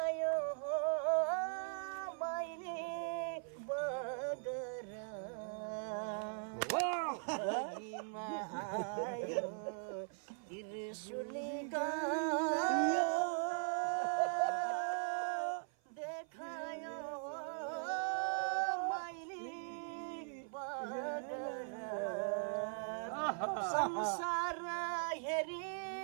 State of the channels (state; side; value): silent; left; 51 dB below the other